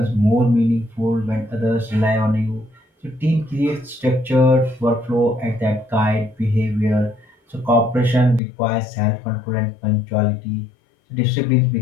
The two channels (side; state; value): right; drops out; at 8.4 s